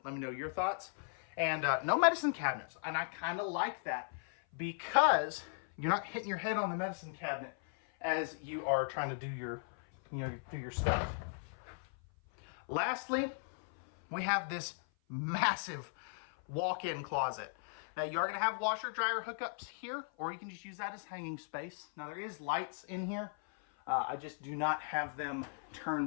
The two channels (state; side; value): silent; right; 53 dB below the other